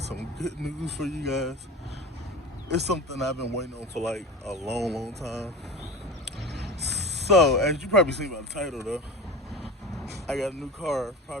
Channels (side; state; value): both; normal; correlation 0.33